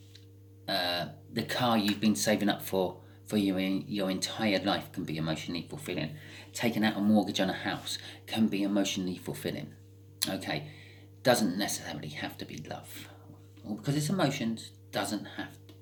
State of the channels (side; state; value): both; identical; correlation 1.00